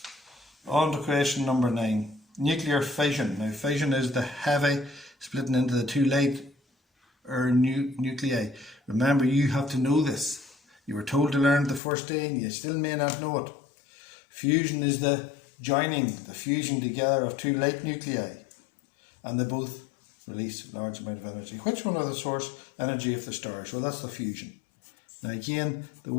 On to question number 9. Nuclear fission. Now fission is the heavy splitting into the two light or nuclei. Remember, you have to know this. You were told to learn it the first day and you still may not know it. Fusion is the joining, the fusing together of two light nuclei, and they both release a large amount of energy. Which one are the source energy of the stars? Well, that's the fusion. Now again, the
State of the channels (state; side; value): drops out; right; at 11.8 s